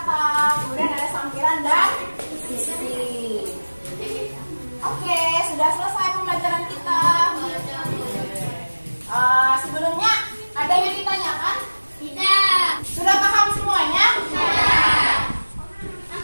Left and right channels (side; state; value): both; inverted; correlation -1.00